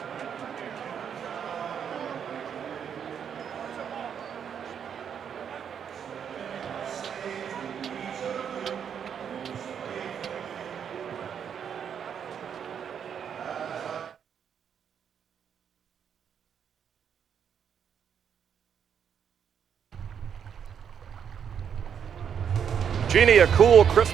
Jeannie, a cool, crisp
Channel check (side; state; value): left; quieter; 7.9 dB